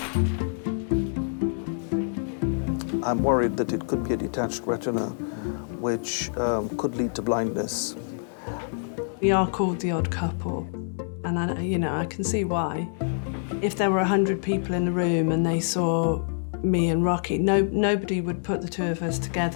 I'm worried that it could be a detached retina, which could lead to blindness. We are called the odd couple, and I can see why. If there were 100 people in the room and they saw me and Rocky, nobody would put the two of us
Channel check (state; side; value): silent; right; digital silence